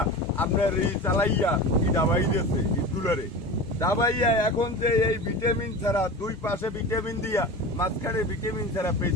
আপনার এই চালাইয়া কি ডাবাই দিয়েছে ইটগুলোরে ডাবাইয়া। এখন যে এই ভিটামিন ছাড়া 2 পাশে ভিটামিন দিয়া মাঝখানে ভিটামিন ছাড়া পেজ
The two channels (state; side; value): normal; both; correlation 0.31